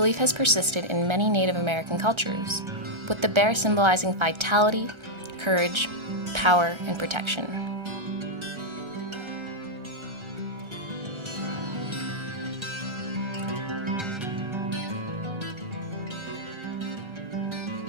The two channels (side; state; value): left; late; 1.3 ms